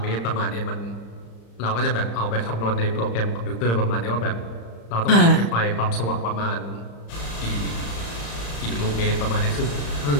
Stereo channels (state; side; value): late; right; 35 ms